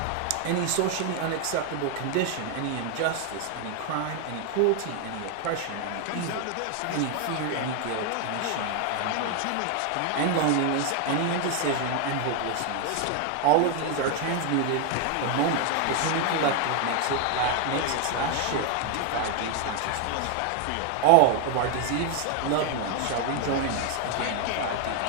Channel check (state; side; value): different; both; correlation 0.01